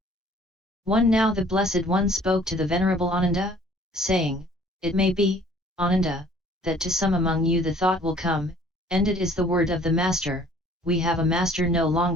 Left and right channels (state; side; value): normal; both; correlation 0.55